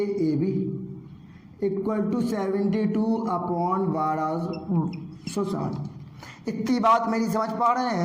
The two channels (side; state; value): both; identical; correlation 1.00